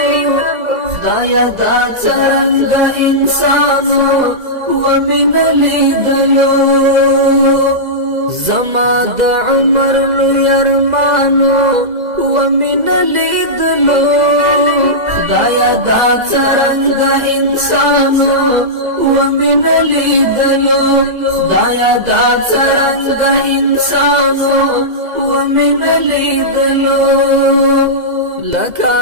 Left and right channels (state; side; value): late; left; 2.0 ms